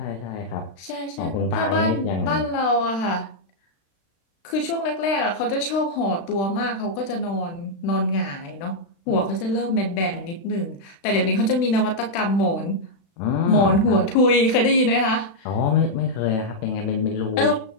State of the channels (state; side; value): late; right; 36 ms